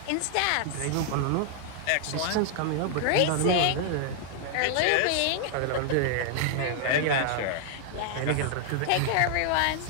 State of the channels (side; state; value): both; different; correlation 0.00